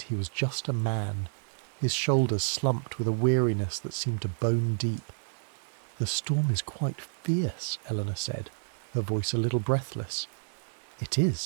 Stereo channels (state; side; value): silent; left; digital silence